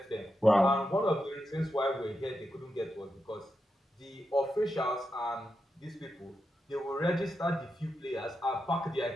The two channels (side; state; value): both; normal; correlation 0.87